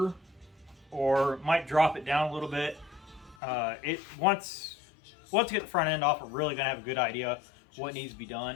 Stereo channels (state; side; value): drops out; right; at 3.4 s